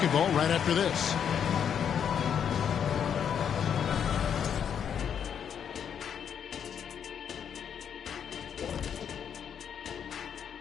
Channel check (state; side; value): quieter; right; 8.1 dB